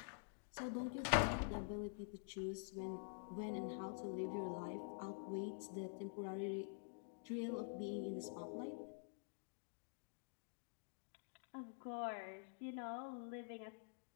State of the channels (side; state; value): right; silent; digital silence